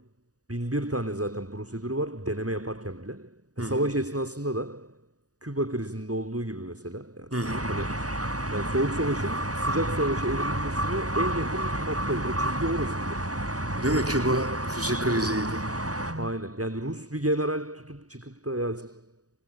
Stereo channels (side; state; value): left; late; 0.67 ms